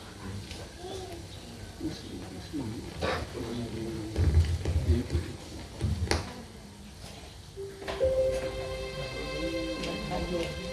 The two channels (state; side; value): identical; both; correlation 1.00